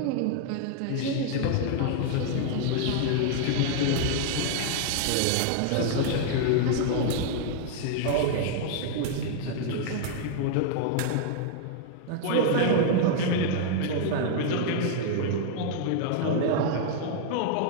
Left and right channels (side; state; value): both; different; correlation -0.01